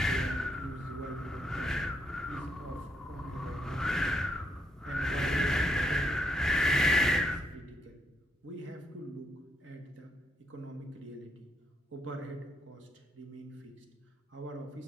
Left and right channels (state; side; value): normal; both; correlation 0.76